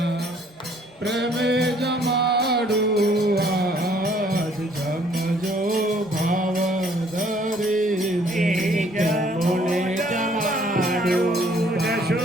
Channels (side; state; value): both; normal; correlation 0.61